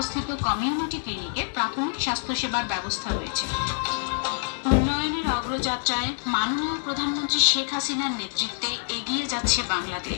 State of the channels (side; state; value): right; silent; digital silence